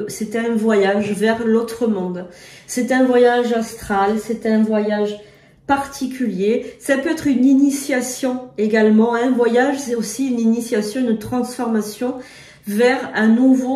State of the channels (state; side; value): identical; both; correlation 1.00